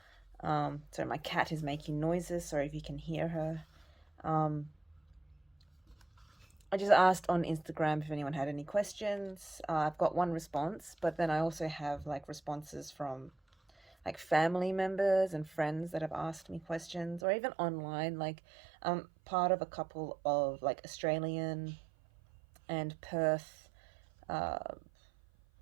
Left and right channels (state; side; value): drops out; left; at 17.2 s